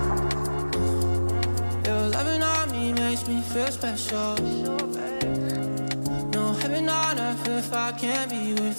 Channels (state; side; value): inverted; both; correlation -1.00